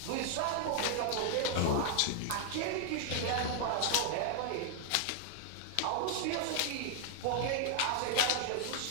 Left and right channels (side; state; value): both; different; correlation 0.00